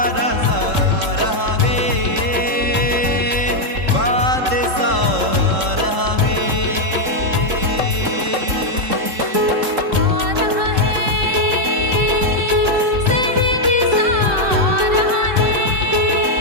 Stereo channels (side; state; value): left; late; 3.7 ms